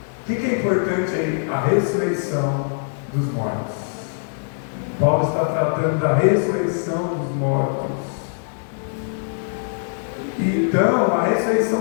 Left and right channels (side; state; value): right; silent; digital silence